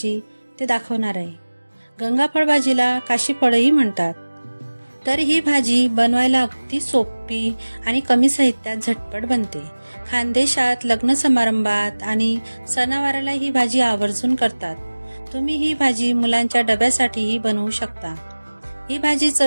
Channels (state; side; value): inverted; both; correlation -1.00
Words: ते दाखवणार आहे। गंगाफळ भाजीला काशीफळही म्हणतात। तर ही भाजी बनवायला अगदी सोपी आणि कमी साहित्यात झटपट बनते। खानदेशात लग्न समारंभात आणि सणावाराला ही भाजी आवर्जून करतात। तुम्ही ही भाजी मुलांच्या डब्यासाठीही बनवू शकता। ही भाजी